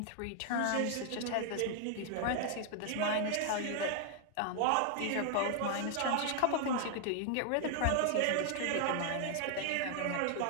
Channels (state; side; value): different; both; correlation 0.00